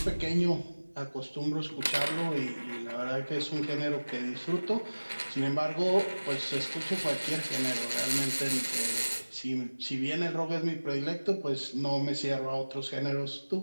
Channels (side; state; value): both; inverted; correlation -1.00